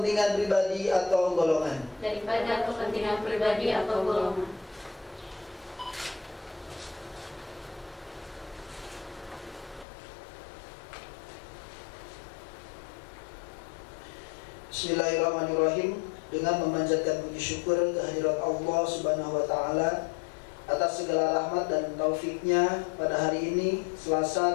pribadi atau golongan. Bismillahirrahmanirrahim. Dengan memanjatkan puji syukur kehadirat Allah Subhanahu wa Ta'ala atas segala rahmat dan taufiknya, pada hari ini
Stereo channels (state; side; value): drops out; right; at 9.9 s